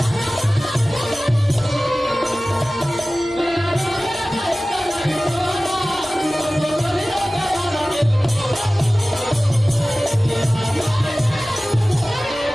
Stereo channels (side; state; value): both; normal; correlation 0.97